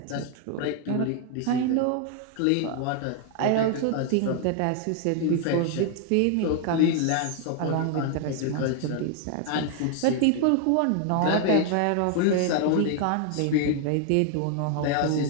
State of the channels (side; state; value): both; different; correlation 0.00